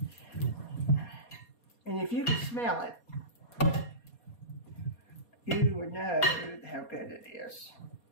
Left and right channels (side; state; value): right; late; 4.2 ms